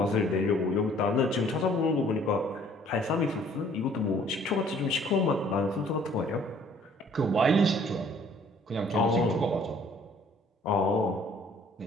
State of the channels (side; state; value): both; normal; correlation 0.57